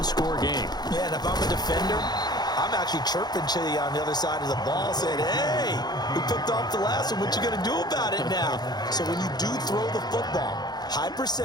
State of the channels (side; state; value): right; late; 0.20 ms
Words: game. Yeah, and if I'm a defender, I'm actually chirping to you on the other side of the ball saying, hey, we picked off the last one. What you going to do about it now? So when you do throw the football, high